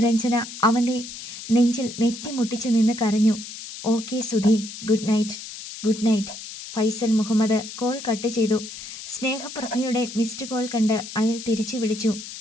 അവൻ്റെ നെഞ്ചിൽ നെറ്റിമുട്ടിച്ച് നിന്ന് കരഞ്ഞു. Okay Sudhi, good night. Good night. Faisal Muhammad call cut ചെയ്തു. സ്നേഹപ്രഭയുടെ മിസ്ഡ് കോൾ കണ്ട് അയാൾ തിരിച്ചു വിളിച്ചു.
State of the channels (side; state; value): left; noise; hiss, 11 dB below the sound